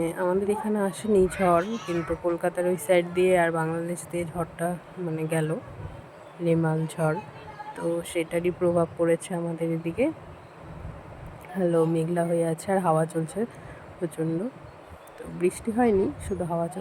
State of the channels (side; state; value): both; identical; correlation 1.00